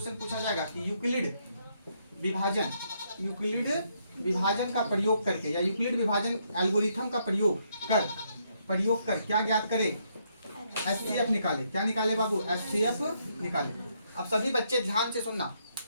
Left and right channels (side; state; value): both; inverted; correlation -0.74